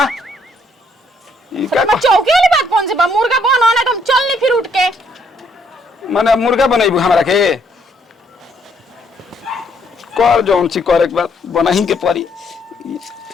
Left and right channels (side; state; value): both; normal; correlation 0.69